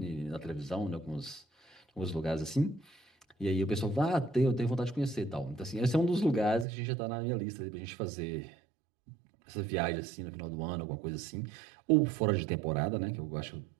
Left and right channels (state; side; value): drops out; left; at 6.7 s